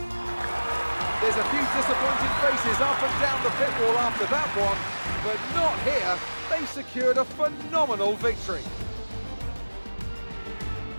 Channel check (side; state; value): both; inverted; correlation -1.00